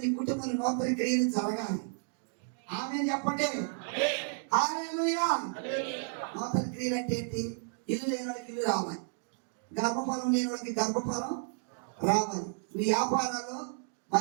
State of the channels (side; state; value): left; silent; 56 dB below the other